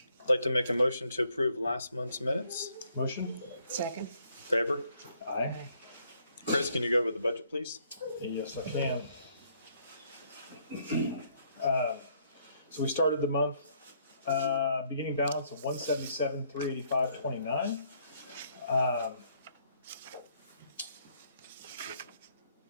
I'd like to make a motion to approve last month's minutes. Motion? Second. Favor? Aye. Chris, can you go over the budget, please? Yes, I can. So we started the month, beginning balance of $177,385.29.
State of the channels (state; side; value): inverted; both; correlation -0.68